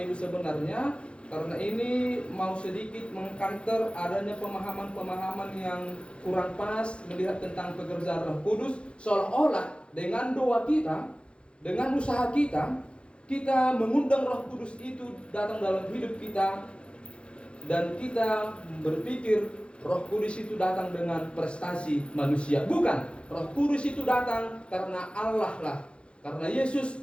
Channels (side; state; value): right; late; 0.058 ms